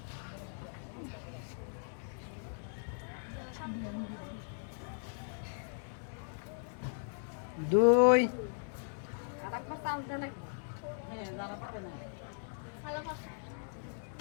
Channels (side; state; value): right; silent; digital silence